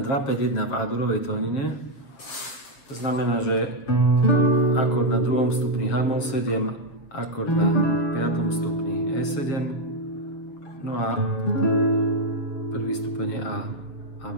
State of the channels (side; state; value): right; late; 7.2 ms